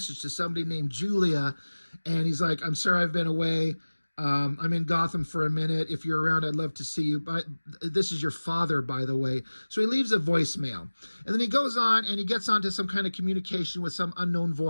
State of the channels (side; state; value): both; inverted; correlation -1.00